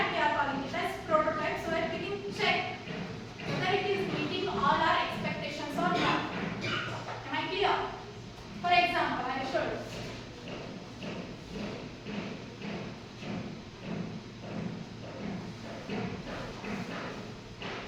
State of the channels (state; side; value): identical; both; correlation 1.00